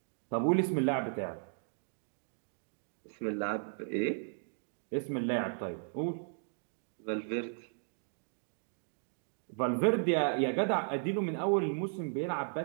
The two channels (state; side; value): silent; left; digital silence